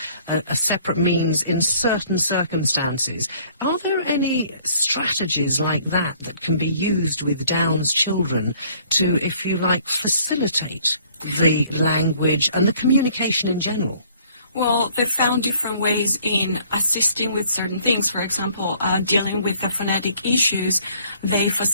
a separate means in certain circumstances. Are there any strategies like that that can be used with Down's children to, if you like, facilitate the language and the communication in general? Well, they found different ways in assisting with certain things. For example, dealing with the phonetic issues, they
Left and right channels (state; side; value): inverted; both; correlation -0.59